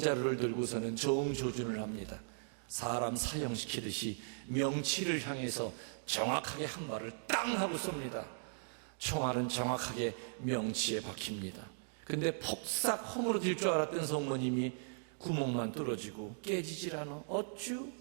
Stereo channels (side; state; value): left; silent; digital silence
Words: 들고서는 정조준을 합니다. 사람 사형시키듯이 명치를 향해서 정확하게 한 발을 땅 하고 쏩니다. 총알은 정확하게 명치에 박힙니다. 근데 폭삭 허물어질 줄 알았던 성모님이 구멍만 뚫어지고 깨지질 않아. 어쭈?